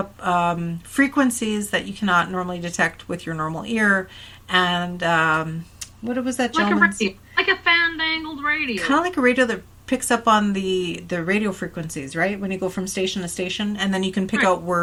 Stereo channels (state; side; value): identical; both; correlation 1.00